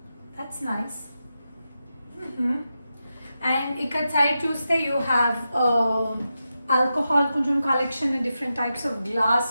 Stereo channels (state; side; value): inverted; both; correlation -0.89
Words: That's nice. And ఇక్కడ సైడ్ చూస్తే you have alcohol కొంచెం collection, different types of